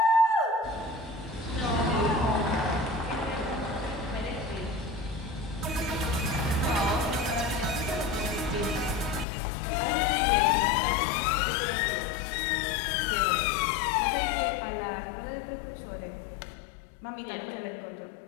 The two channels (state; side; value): drops out; right; at 9.2 s